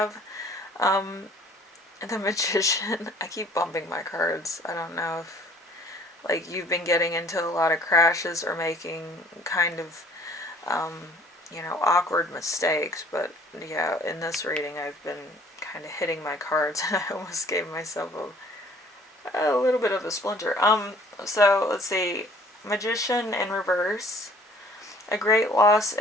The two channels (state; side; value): normal; both; correlation 0.54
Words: the Magician. I keep bumping my cards. I don't know if like you've been getting into a lot of crashes or making kind of awkward mistakes, but yeah, in this reading I've been kind of hitting my cards and I almost gave myself A little bit of a splinter. So let's see. Magician in reverse. A great loss,